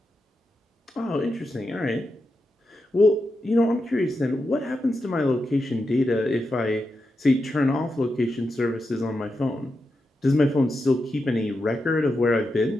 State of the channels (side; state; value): both; normal; correlation 0.87